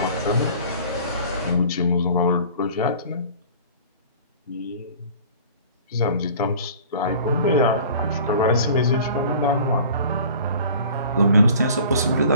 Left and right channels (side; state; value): both; inverted; correlation -0.45